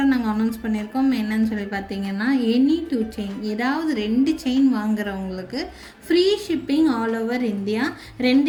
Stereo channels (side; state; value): both; identical; correlation 1.00